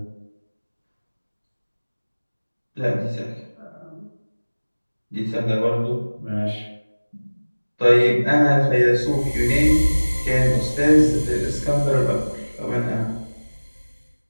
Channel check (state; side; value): inverted; both; correlation -1.00